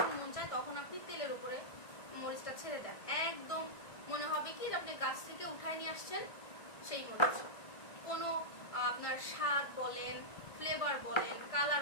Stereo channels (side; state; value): right; late; 1.6 ms